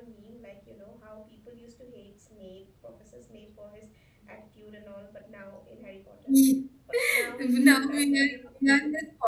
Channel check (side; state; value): both; identical; correlation 1.00